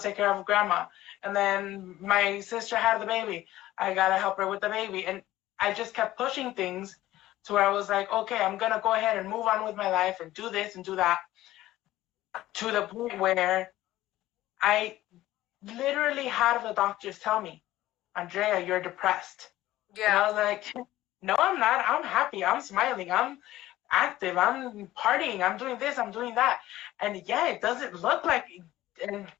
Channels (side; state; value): right; quieter; 15.4 dB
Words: care of grandma. And then my sister had the baby. I gotta help her with the baby. And I just kept pushing things to where I was like, okay, I'm gonna go ahead and move on with my life and do this and do that. To the point where I literally had the doctors tell me, Andrea, you're depressed. Yeah. And I was like, no, I'm not. I'm happy. I'm smiling. I'm active. I'm partying. I'm doing this. I'm doing that. And yeah, it doesn't look like. And